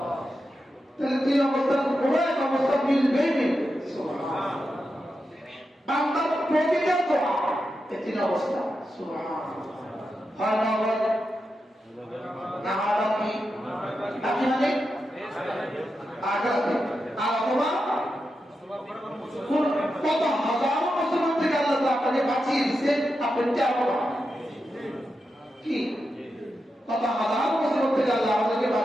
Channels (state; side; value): normal; both; correlation 0.88